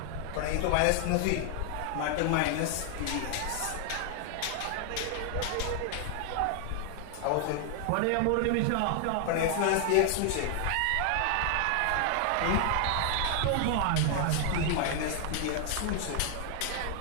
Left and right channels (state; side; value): different; both; correlation 0.00